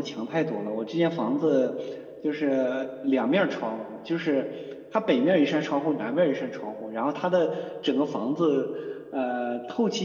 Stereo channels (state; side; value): identical; both; correlation 1.00